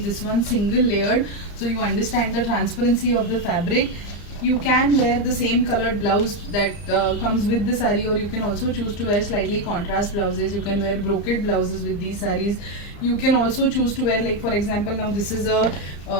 this one single layered so you understand the transparency of the fabric. You can wear the same colored blouse that comes with the saree, or you can also choose to wear slightly contrast blouses. You can wear brocade blouses with these sarees. You can also choose to wear, like for example, now this is a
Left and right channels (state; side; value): late; right; 34 ms